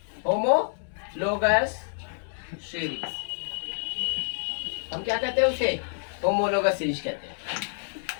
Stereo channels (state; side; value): silent; right; digital silence